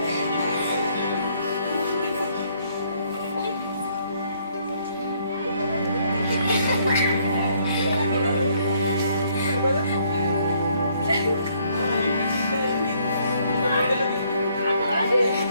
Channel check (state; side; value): inverted; both; correlation -0.67